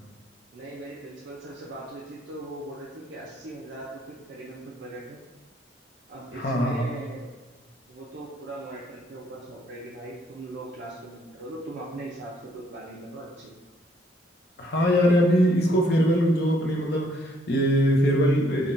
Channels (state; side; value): normal; both; correlation 0.67